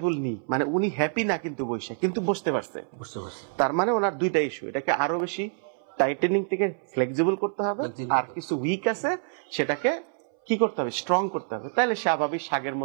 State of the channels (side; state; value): left; silent; 60 dB below the other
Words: নি, মানে উনি হ্যাপি না কিন্তু বসে, কিন্তু বসতে পারছে। তার মানে ওনার দুইটা ইস্যু, এটাকে আরো বেশি টাইটেনিং থেকে ফ্লেক্সিবল করতে হবে, আর কিছু উইক আছে সেটাকে কি করতে হবে, স্ট্রং করতে হবে। তাহলে স্বাভাবিক শাগের